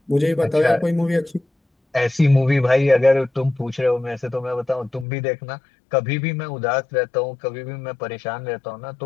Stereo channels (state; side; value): drops out; right; at 5.1 s